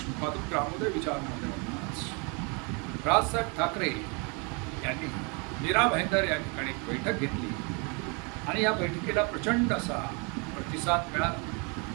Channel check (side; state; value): left; quieter; 32.8 dB